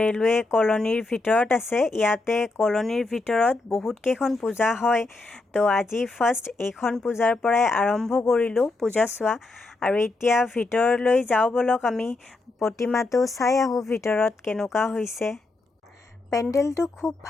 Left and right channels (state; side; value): quieter; right; 3.2 dB